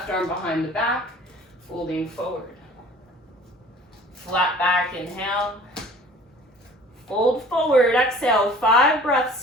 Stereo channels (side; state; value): both; normal; correlation 0.48